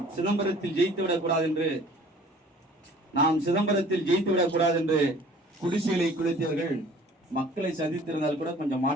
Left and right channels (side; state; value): both; normal; correlation 0.50